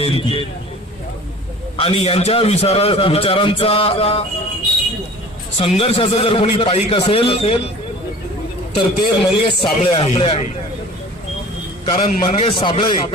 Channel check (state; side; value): normal; both; correlation 0.44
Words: आणि यांच्या विचारांचा संघर्षाचा जर कोणी पाईक असेल तर ते मंगेश साबळे आहे. कारण मंगेश साबळे